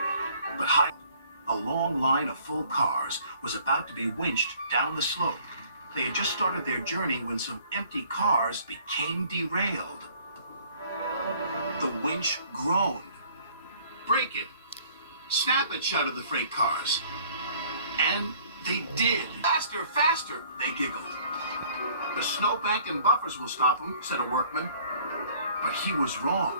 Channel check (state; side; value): inverted; both; correlation -0.57